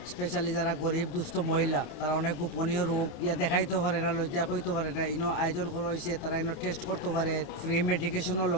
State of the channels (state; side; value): late; right; 28 ms